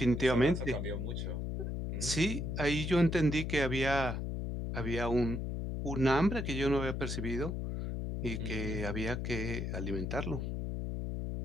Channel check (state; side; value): noise; left; hum, 3 dB below the sound